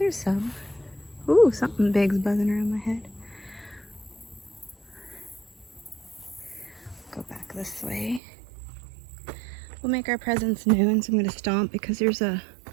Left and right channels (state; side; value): drops out; left; at 8.2 s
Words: some. Ooh, something big's buzzing around my head. Go back this way. We'll make our presence known, so I'm going to stomp because there's a